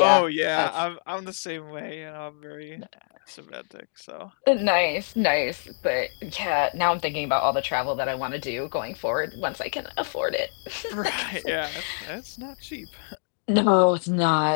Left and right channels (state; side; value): silent; right; digital silence